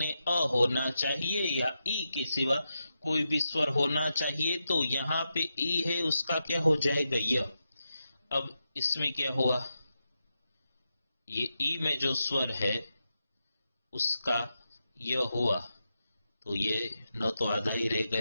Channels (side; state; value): both; inverted; correlation -0.87